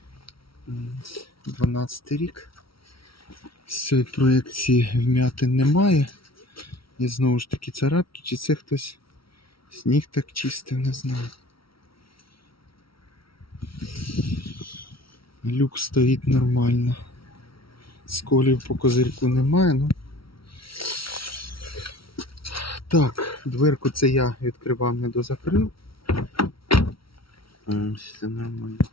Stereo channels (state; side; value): late; right; 0.75 ms